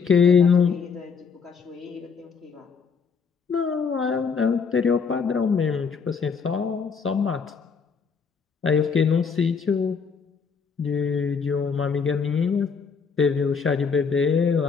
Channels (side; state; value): right; quieter; 5.7 dB